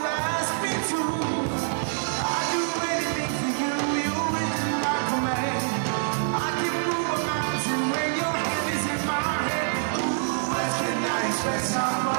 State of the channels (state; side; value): silent; left; digital silence